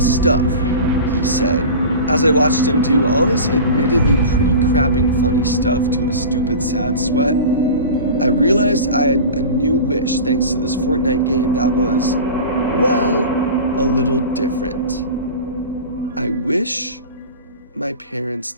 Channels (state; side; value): inverted; both; correlation -0.34